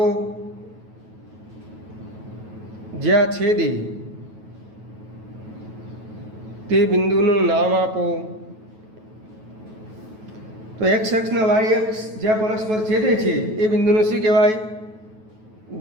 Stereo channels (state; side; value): late; left; 9.3 ms